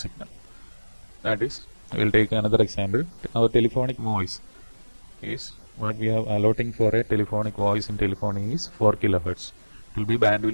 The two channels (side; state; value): both; inverted; correlation -1.00